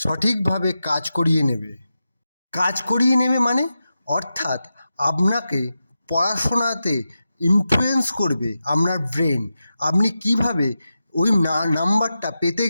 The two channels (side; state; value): both; inverted; correlation -0.90